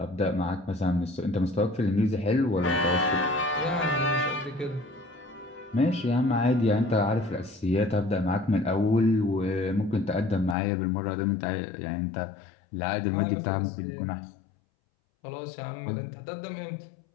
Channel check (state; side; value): drops out; right; at 10.6 s